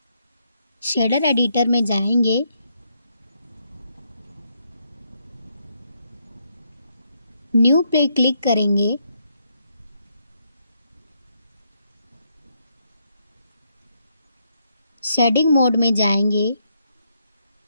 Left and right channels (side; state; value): both; inverted; correlation -0.76